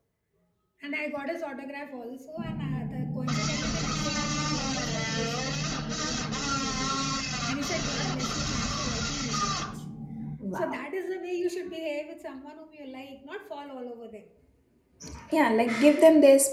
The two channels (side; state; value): both; identical; correlation 1.00